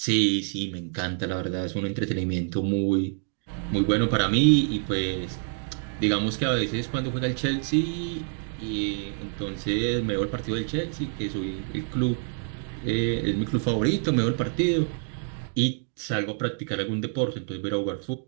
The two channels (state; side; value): silent; left; 60 dB below the other